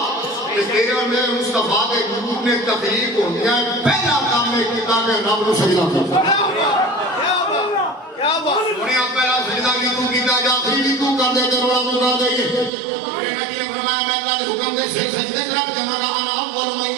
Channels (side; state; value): left; drops out; at 12.7 s